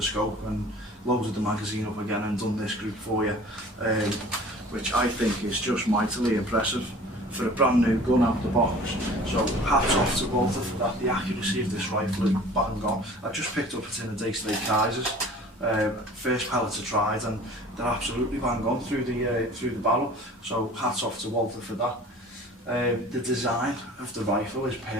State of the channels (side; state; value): both; normal; correlation 0.45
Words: scope and loaded the magazine up again and done this group for you, which I think is just mightily impressive for a brand new gun out the box. So hats off to Walther for that. The accuracy of this rifle is bang on. I just picked up it in the Day-to-Day Kaisers. First pellets are tried and they're absolutely bang on through the barrel. So hats off to Walther for that. The design of the rifle is